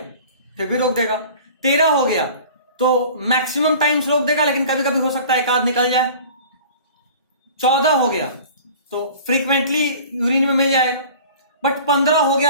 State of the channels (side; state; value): both; inverted; correlation -0.43